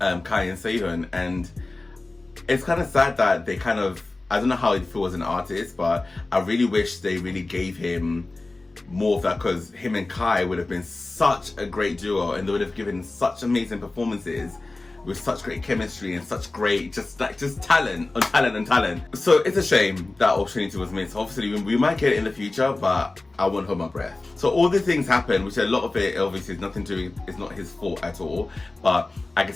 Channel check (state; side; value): quieter; right; 3.2 dB